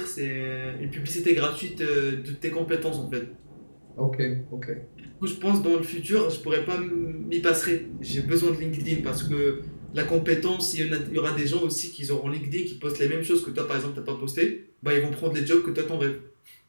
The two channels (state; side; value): inverted; both; correlation -1.00